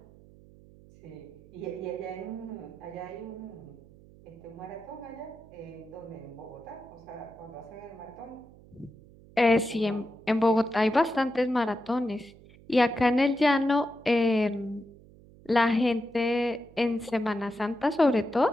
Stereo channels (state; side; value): noise; right; hum, 23 dB below the sound